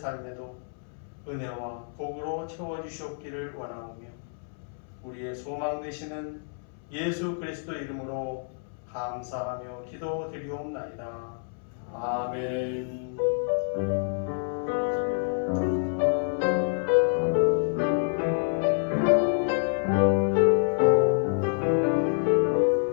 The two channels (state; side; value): silent; right; 59 dB below the other